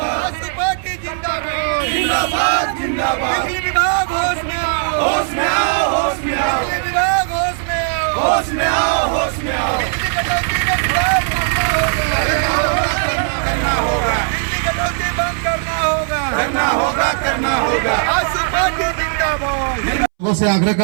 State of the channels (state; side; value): silent; left; 67 dB below the other